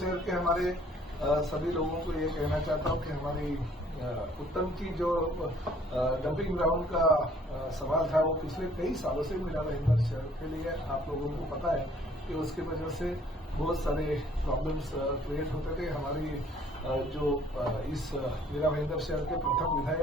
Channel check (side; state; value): both; normal; correlation 0.59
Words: के हमारे सभी लोगों को ये कहना चाहता हूँ कि हमारी उत्तम की जो डंपिंग ग्राउंड का सवाल था वो पिछले कई सालों से मीरा भाईंदर शहर के लिए आप लोगों को पता है कि उसकी वजह से बहुत सारे प्रॉब्लम्स क्रिएट होते थे। हमारी जो इस मीरा भाईंदर शहर के प्रथम